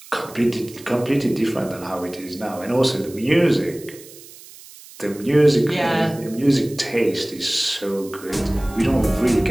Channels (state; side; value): noise; right; hiss, 19 dB below the sound